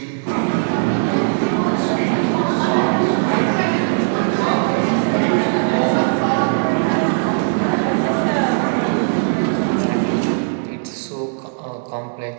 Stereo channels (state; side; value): silent; left; 67 dB below the other